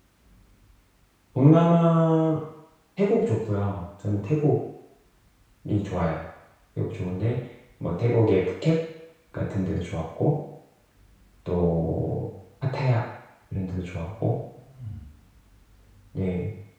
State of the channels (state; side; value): identical; both; correlation 1.00